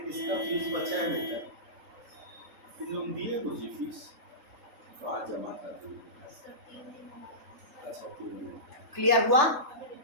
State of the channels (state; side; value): late; left; 3.4 ms